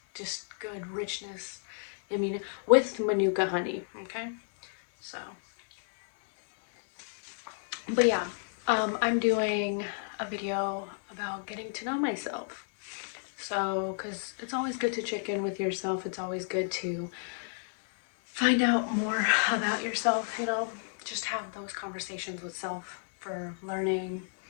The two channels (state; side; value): silent; right; 56 dB below the other